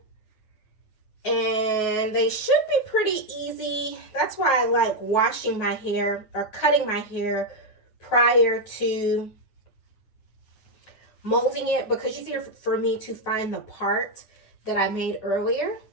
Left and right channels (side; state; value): right; late; 9.4 ms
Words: and they should be pretty easy. That's why I like washing my hair or cutting my hair prior to molding it, because it's easier for me to find the part that I made earlier.